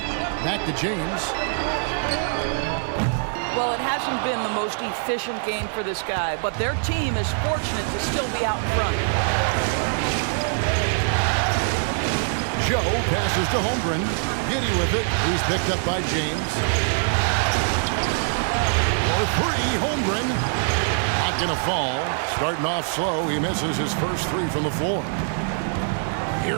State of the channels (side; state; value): left; silent; digital silence